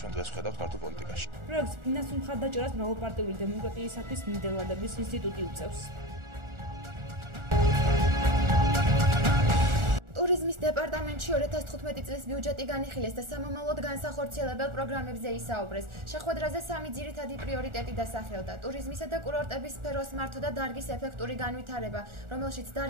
ჩვენ დღეს ვხედავთ ქართულ პოლიტიკაში. პროექტს ფინანსურ მხარდაჭერას მრავალპარტიული დემოკრატიისათვის ნიდერლანდების ინსტიტუტი უწევს. ტურიზმის დეპარტამენტში 2015 წლის ბიუჯეტი განიხილეს და სამომავლოდ განსახორციელებელ პროგრამებზე ისაუბრეს. შეხვედრაზე 3 ძირითადი პრიორიტეტი დასახელდა: ტურიზმისა და კურორტების სფეროს მართვა და დარგის ეფექტური განვითარება, რომელშიც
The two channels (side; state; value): left; late; 1.4 ms